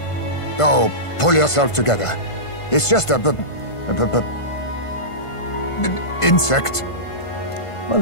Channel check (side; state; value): right; late; 1.5 ms